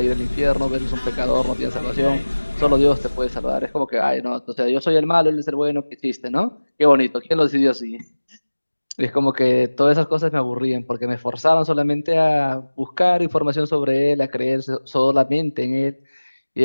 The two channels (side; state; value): both; inverted; correlation -1.00